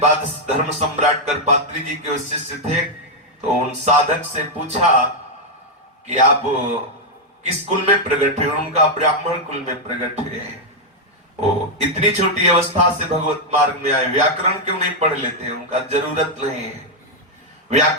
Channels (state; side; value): normal; both; correlation -0.01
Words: धर्म सम्राट करपात्री जी के शिष्य थे, तो उन साधक से पूछा कि आप किस कुल में प्रकट हुए? उनका ब्राह्मण कुल में प्रकट हुए। वो इतनी छोटी अवस्था से भगवत मार्ग में आए, व्याकरण क्यों नहीं पढ़ लेते? उनका जरूरत नहीं है,